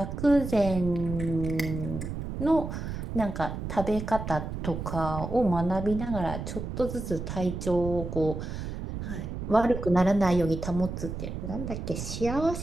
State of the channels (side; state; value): right; noise; rumble, 6 dB below the sound